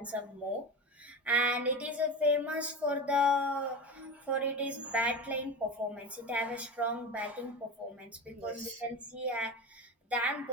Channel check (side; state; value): both; normal; correlation 0.25